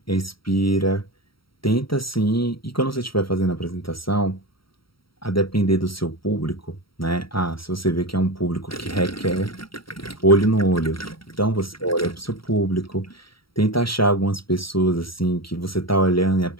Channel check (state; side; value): late; right; 0.74 ms